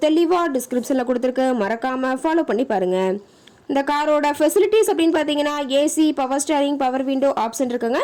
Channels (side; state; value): both; identical; correlation 1.00